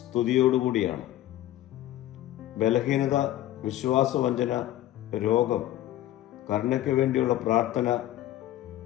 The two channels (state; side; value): quieter; right; 13.9 dB